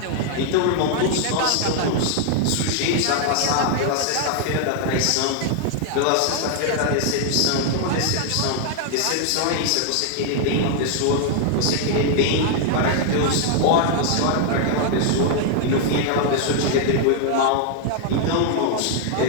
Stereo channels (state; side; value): different; both; correlation 0.00